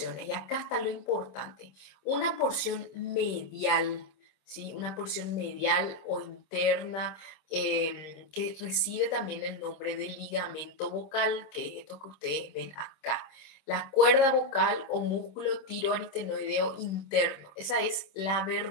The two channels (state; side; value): late; right; 26 ms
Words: y acá está lo importante. Una porción medial, ¿sí? Una porción medial o interna que recibe también el nombre de ligamento vocal, que es esto que ustedes ven acá. La cuerda vocal o músculo tiroaritenoideo interno. Esa es la